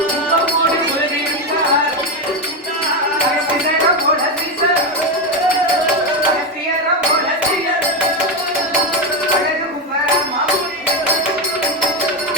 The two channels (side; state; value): both; normal; correlation 0.11